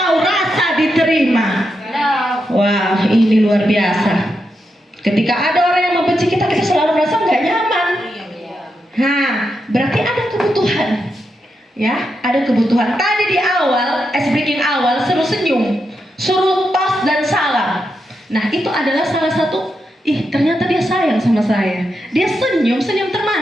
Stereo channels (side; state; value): both; normal; correlation 0.85